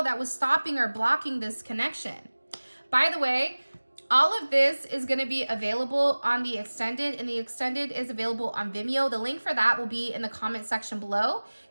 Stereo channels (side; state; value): both; inverted; correlation -1.00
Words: that was stopping or blocking this connection. By the way, all of this is going to be available on the extended, and the extended is available on Vimeo. The link for that will be in the comment section below.